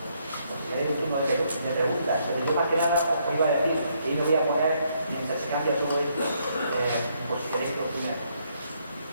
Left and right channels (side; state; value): both; inverted; correlation -0.73